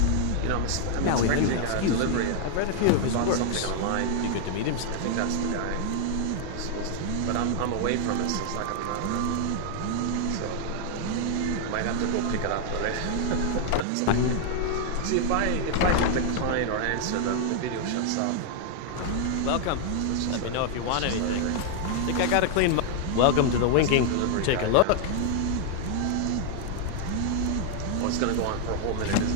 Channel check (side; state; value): both; different; correlation 0.00